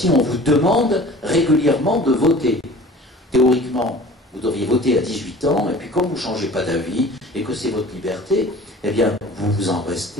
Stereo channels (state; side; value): normal; both; correlation 0.44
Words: on vous demande régulièrement de voter. Théoriquement, vous devriez voter à 18 ans, et puis comme vous ne changez pas d'avis, et que c'est votre liberté, eh bien, vous vous en